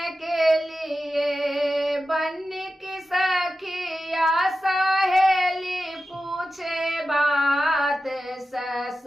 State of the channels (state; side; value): normal; both; correlation 0.93